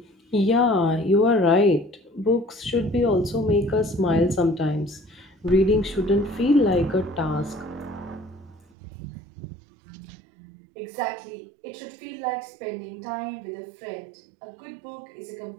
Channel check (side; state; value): left; drops out; at 8.7 s